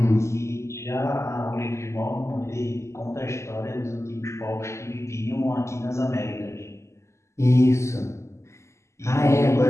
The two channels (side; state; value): right; late; 0.13 ms